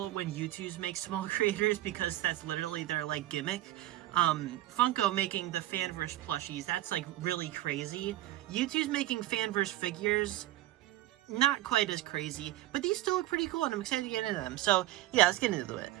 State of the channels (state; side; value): quieter; left; 15.4 dB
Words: when YouTubes make small creators because that's literally their like gimmick. Funko making the Fanverse plushies, that's like really crazy. YouTube's making Fanverse figures, not quite as crazy, but these still look pretty cool and I'm excited to get into them. So yeah, let's get into it.